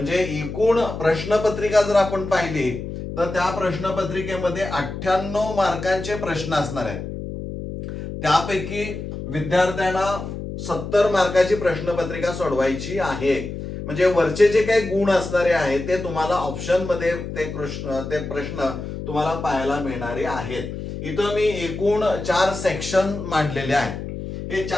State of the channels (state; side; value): noise; left; hum, 8 dB below the sound